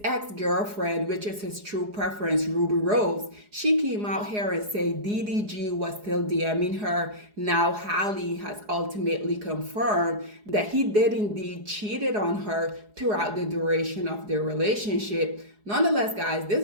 ex-girlfriend, which is his true preference, Ruby Rose, she came out here and said DDG was still DMing her. Now Halle has ultimately confirmed that he did indeed cheated on her throughout the duration of their relationship. Nonetheless, guys,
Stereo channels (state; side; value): late; left; 4.8 ms